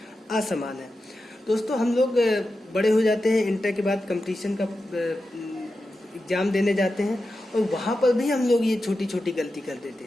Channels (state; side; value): normal; both; correlation 0.91